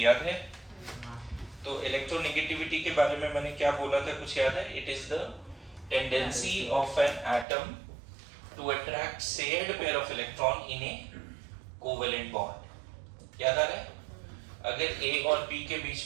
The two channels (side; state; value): left; drops out; at 7.5 s